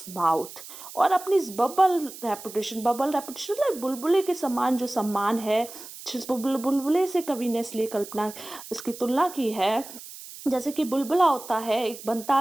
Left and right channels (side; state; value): right; noise; hiss, 14 dB below the sound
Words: mouth, और अपनी इस बबल रेपुटेशन लाइक बुलबुले के समान जो सम्मान है, जिस बुलबुले से कवि ने इसलिए कल्पना इसकी तुलना की है, जैसे कि बुलबुला होता है, एक बनता